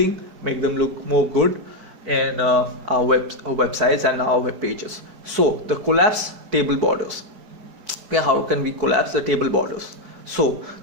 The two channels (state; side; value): late; left; 4.6 ms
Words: make them look more good in our websites and our web pages. So the collapse table borders. Okay, how can we collapse the table borders? So